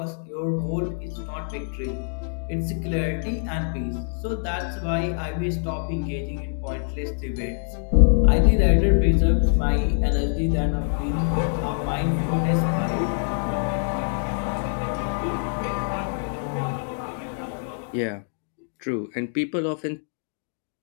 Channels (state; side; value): silent; right; digital silence